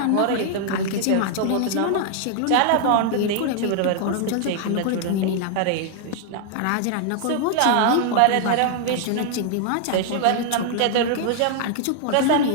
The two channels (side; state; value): both; different; correlation 0.00